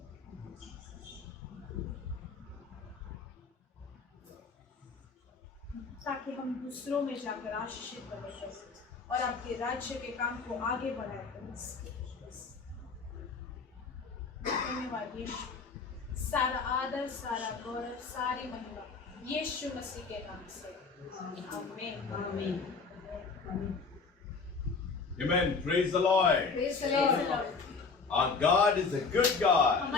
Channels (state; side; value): quieter; right; 4.7 dB